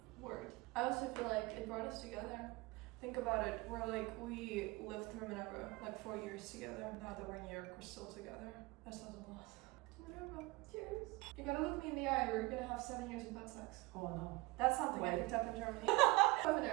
word. I also feel like it brought us together. Think about it, we lived through Minerva, 4 years together. Now that we're in New York, we're still together. That says a lot. To Minerva. Cheers. You gotta look me in the eye, or you're gonna have 7 years of butt sex. Oh no. That's something I picked up in Germany.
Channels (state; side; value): quieter; left; 22.6 dB